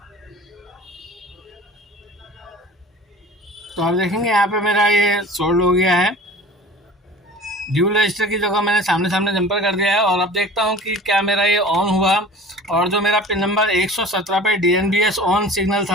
तो आप देखेंगे यहाँ पे मेरा ये सोल्ड हो गया है। ड्यूल रजिस्टर की जगह मैंने सामने सामने जंपर कर दिया है, और अब देखता हूँ कि क्या मेरा ये ऑन हुआ, और जो मेरा पिन नंबर 117 पे DNBS ऑन सिग्नल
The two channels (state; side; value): normal; both; correlation 0.42